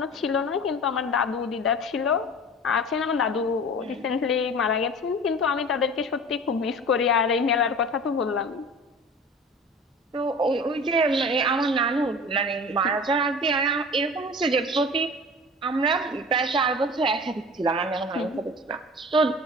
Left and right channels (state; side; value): normal; both; correlation 0.39